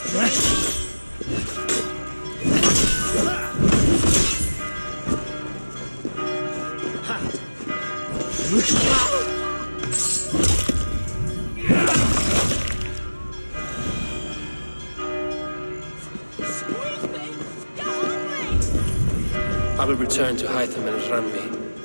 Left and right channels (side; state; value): both; inverted; correlation -1.00